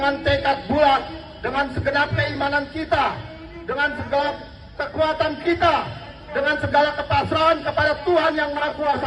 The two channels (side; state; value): both; identical; correlation 1.00